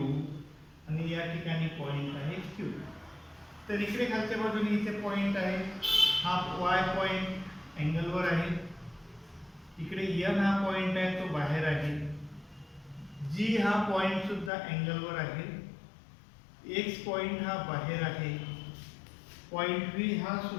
आणि या ठिकाणी पॉइंट आहे क्यू. तर इकडे खालच्या बाजूने इथे पॉइंट आहे. हा वाय पॉइंट अँगलवर आहे. इकडे एन हा पॉइंट आहे तो बाहेर आहे. जी हा पॉइंट सुद्धा अँगलवर आहे. एक्स पॉइंट हा बाहेर आहे. पॉइंट बी हा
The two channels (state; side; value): drops out; right; at 14.5 s